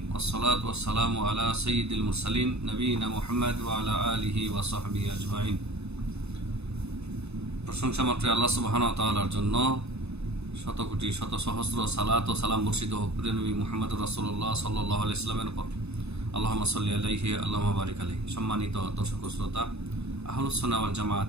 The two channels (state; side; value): late; left; 0.80 ms